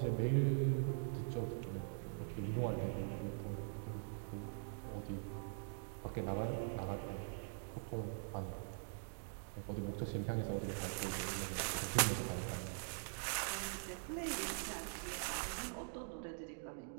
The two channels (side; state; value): left; silent; digital silence